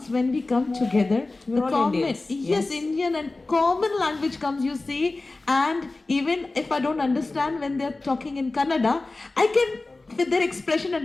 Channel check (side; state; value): right; quieter; 3.2 dB